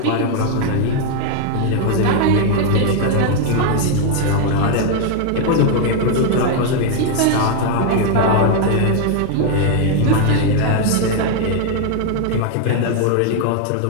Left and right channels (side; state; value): both; different; correlation 0.00